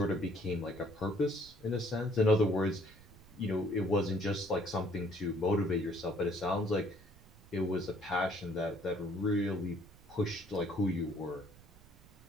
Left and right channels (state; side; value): noise; right; rumble, 23 dB below the sound